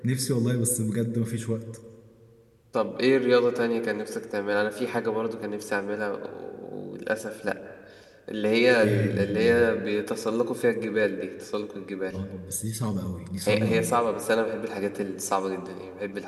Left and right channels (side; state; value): both; identical; correlation 1.00